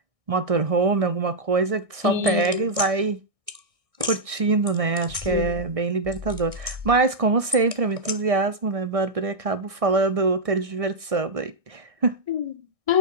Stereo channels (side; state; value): left; late; 1.6 ms